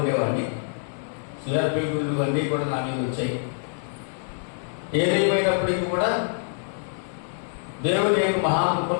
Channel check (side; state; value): right; silent; digital silence